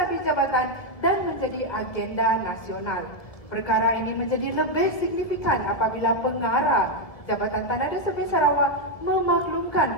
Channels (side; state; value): right; late; 1.8 ms